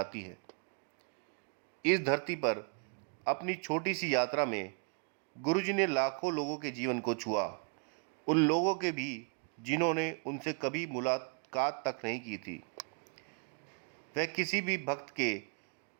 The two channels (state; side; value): quieter; left; 36.5 dB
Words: है। इस धरती पर अपनी छोटी सी यात्रा में गुरुजी ने लाखों लोगों के जीवन को छुआ, उन लोगों के भी जिन्होंने उनसे कभी मुलाकात तक नहीं की थी। वह किसी भी भक्त के